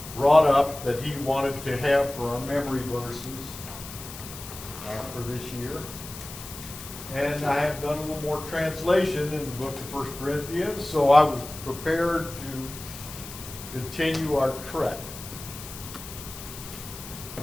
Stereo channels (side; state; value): left; noise; hiss, 12 dB below the sound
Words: brought up that he wanted to have for our memory verses for this year. And I have done a little more translation in the book of 1 Corinthians, so I was prepared to continue our trek.